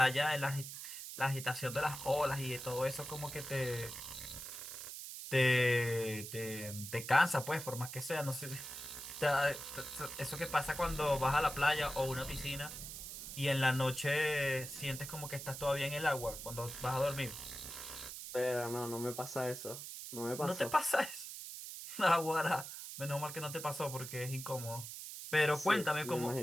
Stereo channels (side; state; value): right; noise; hiss, 9 dB below the sound